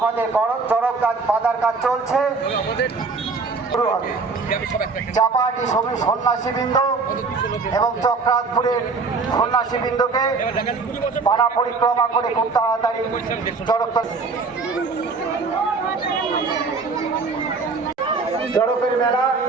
চড়ক কাজ বাঁধার কাজ চলছে, শুরু হবে। চাপাহাটি সন্ন্যাসীবৃন্দ এবং চক্রাতপুরের সন্ন্যাসীবৃন্দকে পাড়া পরিক্রমা করে খুব তাড়াতাড়ি চড়কের মেলা,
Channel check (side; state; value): left; quieter; 4.4 dB